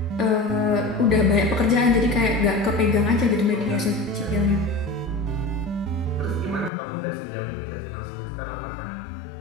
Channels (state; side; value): drops out; right; at 6.7 s